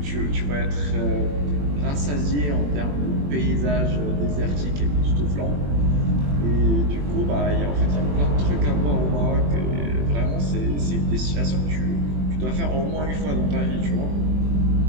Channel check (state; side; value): late; left; 21 ms